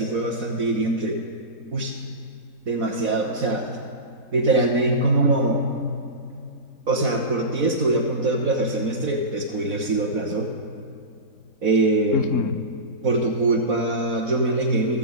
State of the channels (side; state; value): left; late; 4.0 ms